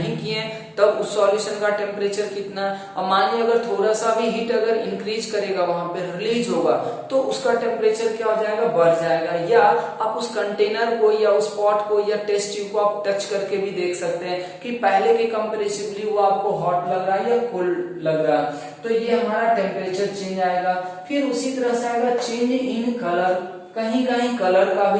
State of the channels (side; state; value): both; identical; correlation 1.00